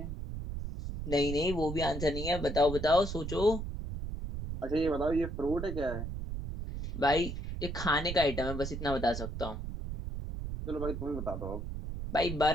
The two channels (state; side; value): noise; right; rumble, 6 dB below the sound